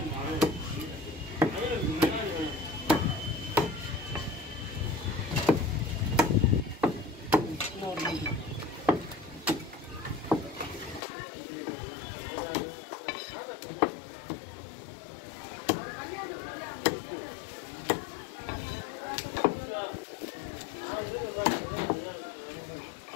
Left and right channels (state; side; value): drops out; right; at 11.0 s